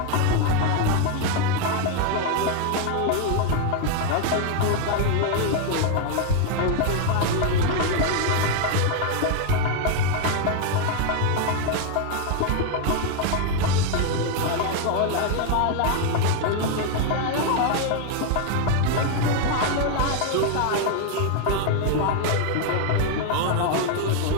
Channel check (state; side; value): different; both; correlation 0.01